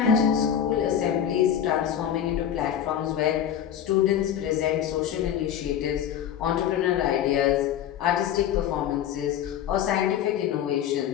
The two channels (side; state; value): right; quieter; 9.7 dB